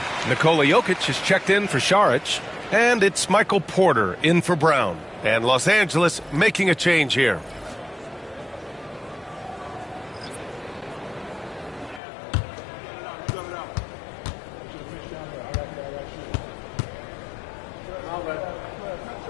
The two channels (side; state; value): right; drops out; at 12.0 s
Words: Nikola Jokic is checked in for Šarić. And it's Michael Porter in for Brown. And Los Angeles making a change here.